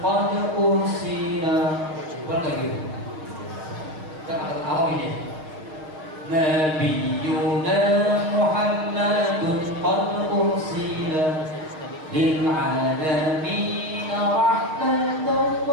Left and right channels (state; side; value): late; left; 6.5 ms